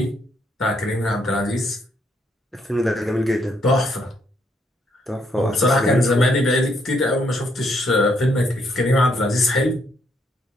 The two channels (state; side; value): normal; both; correlation 0.72